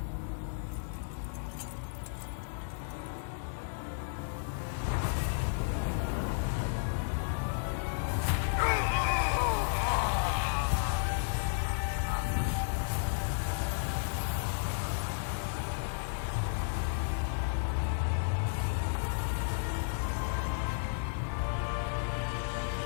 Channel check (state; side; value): silent; right; 56 dB below the other